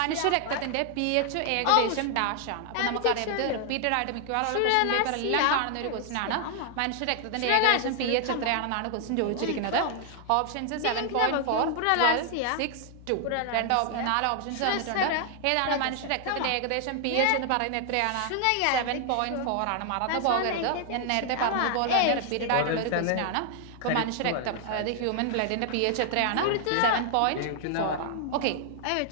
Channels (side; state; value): both; different; correlation 0.00